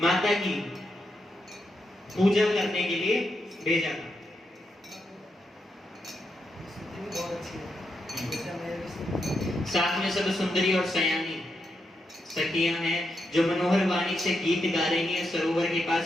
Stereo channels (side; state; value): both; normal; correlation 0.83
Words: माता की पूजा करने के लिए भेजा था। साथ में सब सुंदरी और सयानी सखियां हैं, जो मनोहर वाणी से गीत गा रही हैं। सरोवर के